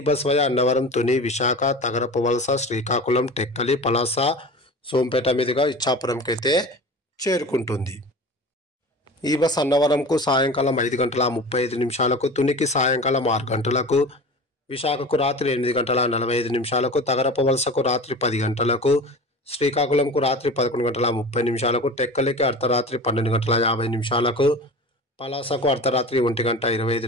బస్ వయా అన్నవరం, తుని, విశాఖ, తగరపు వలస, శ్రీకాకుళం, టెక్కలి, పలాస, సోంపేట మీదుగా ఇచ్చాపురంకి అయితే చేరుకుంటుంది. ఈ బస్ అన్నవరంకు సాయంకాలం 5:35, తునికి సాయంకాలం 6 గంటలకు, విశాఖకు రాత్రి 8:45, తగరపు వలసకు రాత్రి 10 గంటలకు, శ్రీకాకుళంకు రాత్రి 11:30, టెక్కలికి అర్ధరాత్రి 12:50, పలాసకు అర్ధరాత్రి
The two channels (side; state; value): both; normal; correlation 0.34